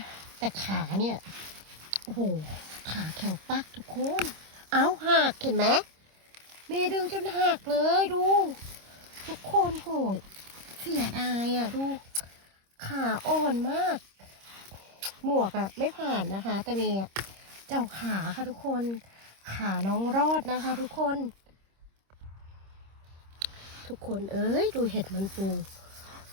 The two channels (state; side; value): late; left; 26 ms